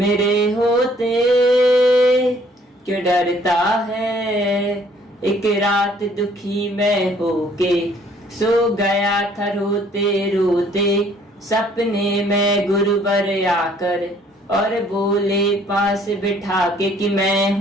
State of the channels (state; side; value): normal; both; correlation 0.60